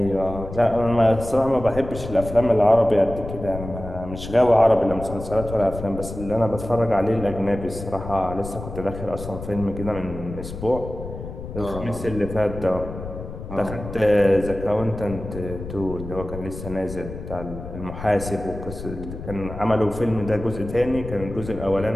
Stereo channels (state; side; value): noise; left; rumble, 10 dB below the sound